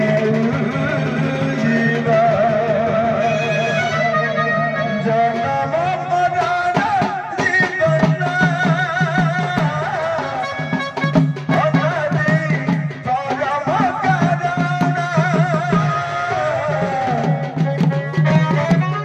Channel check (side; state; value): both; identical; correlation 1.00